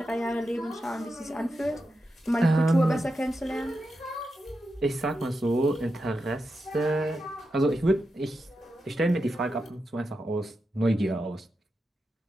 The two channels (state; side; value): normal; both; correlation 0.88